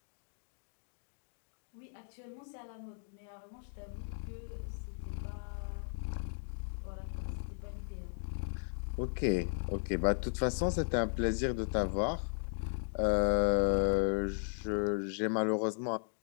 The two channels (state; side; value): silent; right; digital silence